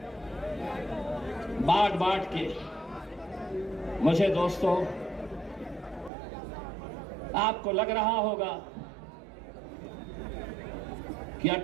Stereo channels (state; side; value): drops out; left; at 6.1 s